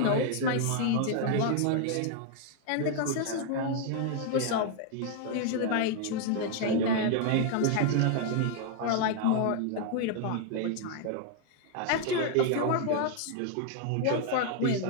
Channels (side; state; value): both; different; correlation 0.00